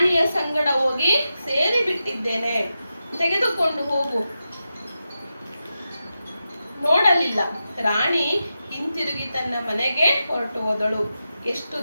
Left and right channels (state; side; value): inverted; both; correlation -0.90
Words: ಸಂಗಡ ಹೋಗಿ ಸೇರಿ ಬಿಟ್ಟಿದ್ದೇನೆ, ತೆಗೆದುಕೊಂಡು ಹೋಗು. ನೋಡಲಿಲ್ಲ. ರಾಣಿ ಹಿಂತಿರುಗಿ ತನ್ನ ಮನೆಗೆ ಹೊರಟು ಹೋದಳು. ಎಷ್ಟು